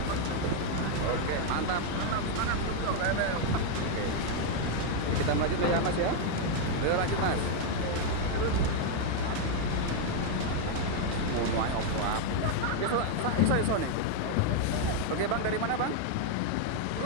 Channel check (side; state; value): both; different; correlation 0.01